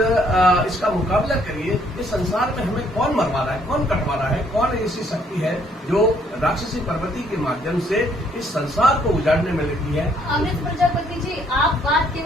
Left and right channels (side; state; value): both; normal; correlation 0.66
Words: मुकाबला करिए। इस संसार में हमें कौन मरवा रहा है, कौन कटवा रहा है, कौन ऐसी शक्ति है जो राक्षसी प्रवृत्ति के माध्यम से इस संसार को उजाड़ने में लगी है? अमृत प्रजापति जी, आप बात